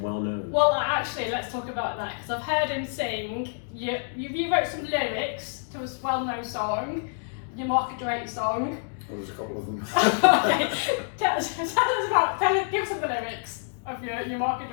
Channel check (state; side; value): silent; right; digital silence